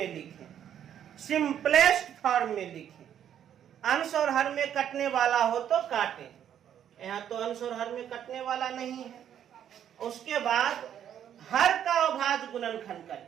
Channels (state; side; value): quieter; left; 9.8 dB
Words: लिखें, सिंपलेस्ट फॉर्म में लिखें। अंश और हर में कटने वाला हो तो काटें, यहाँ तो अंश और हर में कटने वाला नहीं है। उसके बाद हर का अभाज्य गुणनखंड